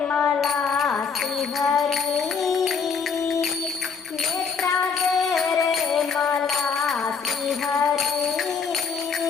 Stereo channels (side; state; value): right; quieter; 5.8 dB